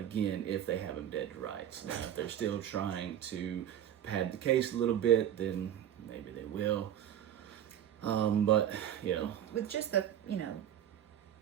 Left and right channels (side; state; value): left; quieter; 10.5 dB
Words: if they have him dead to rights. Now, if they're still trying to pad the case a little bit, then maybe they will. But, with just the